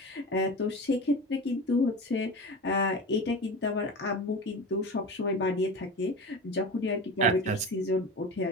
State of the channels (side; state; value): both; normal; correlation 0.30